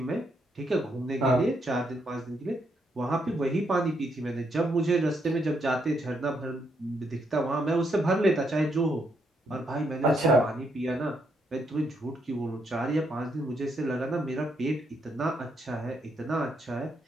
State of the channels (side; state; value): both; normal; correlation 0.76